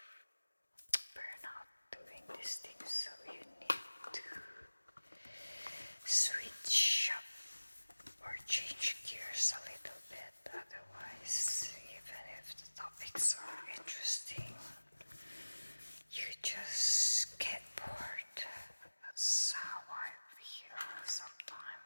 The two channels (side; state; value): both; inverted; correlation -1.00